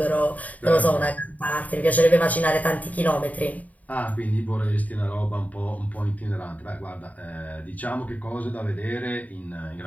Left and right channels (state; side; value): late; right; 0.073 ms